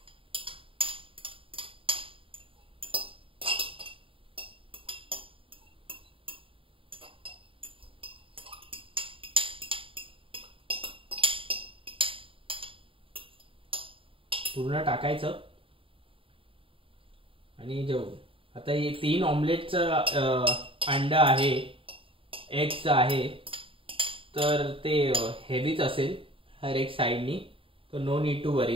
पूर्ण टाकायचं. आणि आता हे 3 ऑमलेटचं अंडा आहे, एगचं आहे, तर ते हेवीच असेल हर एक साईडनी. तर नो नीड टू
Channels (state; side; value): late; left; 0.26 ms